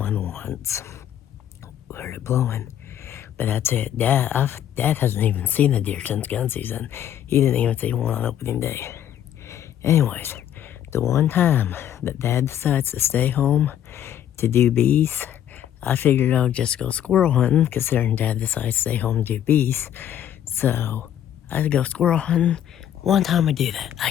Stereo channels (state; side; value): quieter; right; 10.6 dB